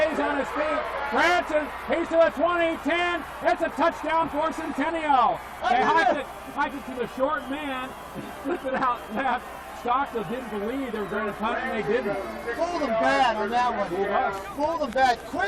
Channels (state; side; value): identical; both; correlation 1.00